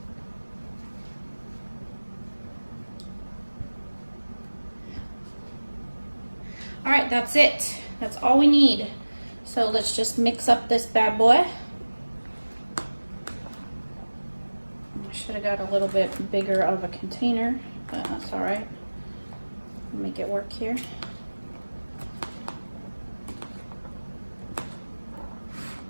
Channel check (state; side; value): inverted; both; correlation -1.00